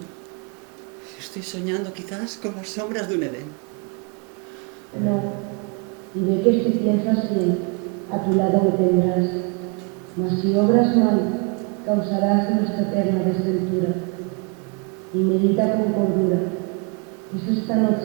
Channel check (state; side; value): quieter; left; 33.5 dB